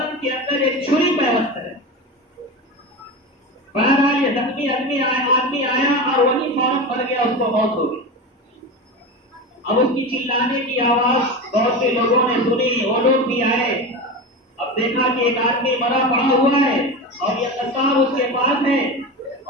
کے اندر ایک چھری پیوست ہے. بہرحال یہ زخمی آدمی آیا اور وہی فوراً مر گیا، اس کو موت ہو گئی. اب اس کی چلانے کی آواز بہت سے لوگوں نے سنی، وہ لوگ بھی آئے. اب دیکھا کہ ایک آدمی مرا پڑا ہوا ہے اور یہ قصاب اس کے پاس ہے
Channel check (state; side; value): normal; both; correlation 0.24